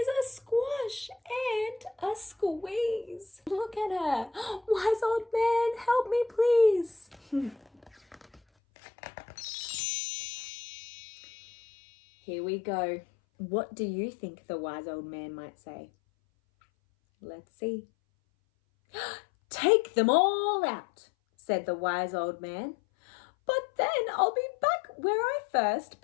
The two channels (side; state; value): right; drops out; at 8.4 s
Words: a squash and a squeeze. Look at her. Wise old man, help me please. Here we go. What do you think the wise old man might say? Let's see. Take them all out, said the wise old man. But then I'll be back where I first